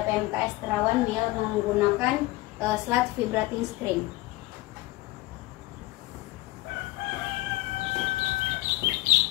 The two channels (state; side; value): quieter; right; 19.2 dB